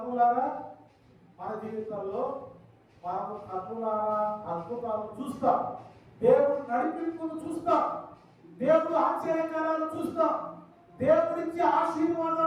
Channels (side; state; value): both; identical; correlation 1.00